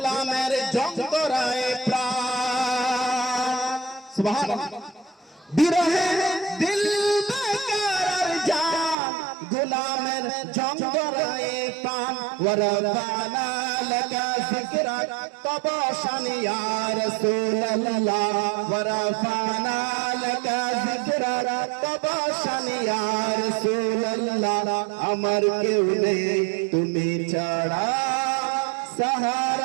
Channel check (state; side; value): drops out; left; at 9.0 s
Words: জঙ্গরায় প্রাণ সুবহানাল্লাহ বিরহে দিল বেকার জান গোলামের জঙ্গরায় প্রাণ ওয়ারাফানা লাকা যিকরাক তবশান ইয়া রাসূলুল্লাহ ওয়ারাফানা লাকা যিকরাক তবশান ইয়া রাসূলুল্লাহ আমার কেউ নেই তুমি ছাড়া